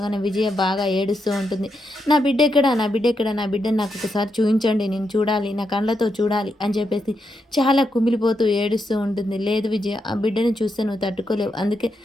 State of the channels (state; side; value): normal; both; correlation 0.83